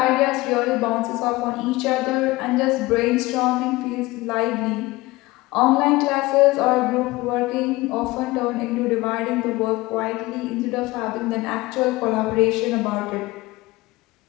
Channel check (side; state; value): right; quieter; 20.4 dB